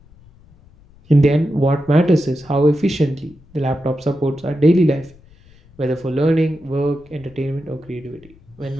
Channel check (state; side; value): noise; left; rumble, 26 dB below the sound